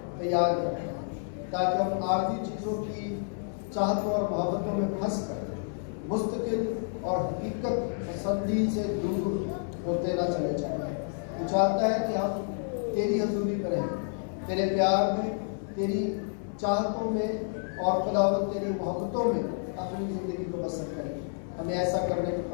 تیار کرتا ہے تاکہ ہم عارضی چیزوں کی چاہتوں اور محبتوں میں پھنس کر مستقل اور حقیقت پسندی سے دور ہوتے نہ چلے جائیں۔ تو چاہتا ہے کہ ہم تیری حضوری میں رہیں، تیرے پیار میں، تیری چاہتوں میں اور خداوند تیری محبتوں میں اپنی زندگی کو بسر کریں۔ ہمیں ایسا کرنے کی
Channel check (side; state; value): right; silent; 58 dB below the other